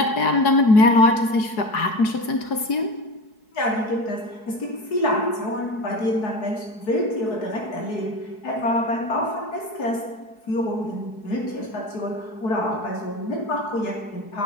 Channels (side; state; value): right; late; 4.7 ms